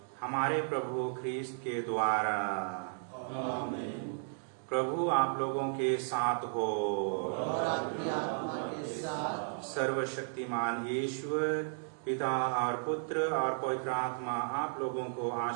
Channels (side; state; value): left; silent; digital silence